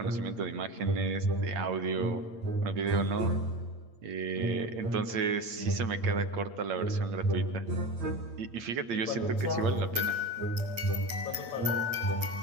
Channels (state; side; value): late; left; 8.8 ms